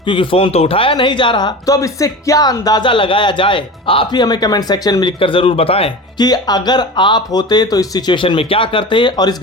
क्योंकि फोन तो उठाया नहीं जा रहा। तो अब इससे क्या अंदाजा लगाया जाए, आप ही हमें कमेंट सेक्शन में लिखकर जरूर बताएं कि अगर आप होते तो इस सिचुएशन में क्या करते, और इस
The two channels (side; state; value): both; normal; correlation 0.31